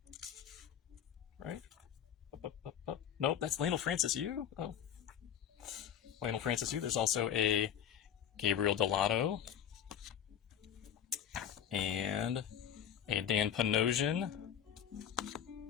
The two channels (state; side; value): quieter; right; 9.4 dB